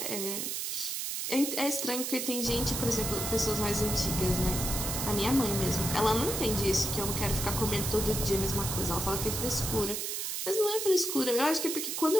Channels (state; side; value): noise; right; hiss, 2 dB below the sound